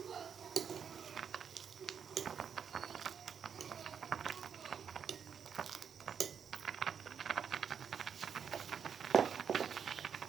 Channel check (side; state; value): left; quieter; 7.3 dB